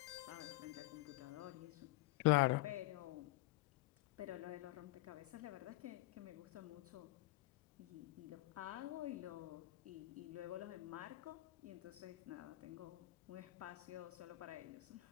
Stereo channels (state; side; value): quieter; right; 19.0 dB